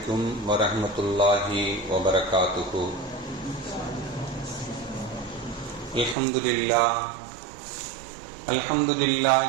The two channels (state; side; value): drops out; left; at 6.2 s